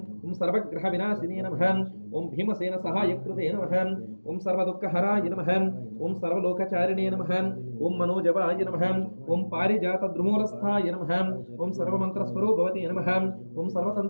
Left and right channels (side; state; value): both; inverted; correlation -1.00